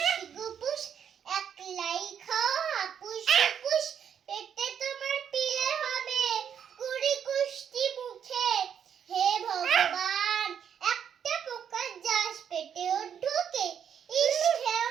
গুপুস, একলাই খাও হাপুস হুপুস, পেটে তোমার পিলে হবে কুড়ি কুষ্টি মুখে, হে ভগবান একটা পোকা যাস পেটেও ঢুকে, ইস খেও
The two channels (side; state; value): left; quieter; 8.3 dB